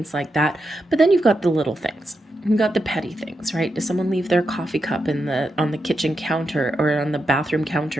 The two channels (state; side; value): normal; both; correlation 0.86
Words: like that. But then you've got the little things. You've got the petty things, right? Does someone leave their coffee cup on the kitchen counter or on the bathroom